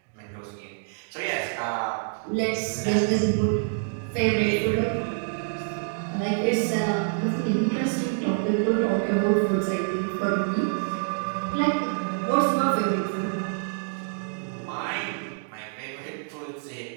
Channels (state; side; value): silent; left; digital silence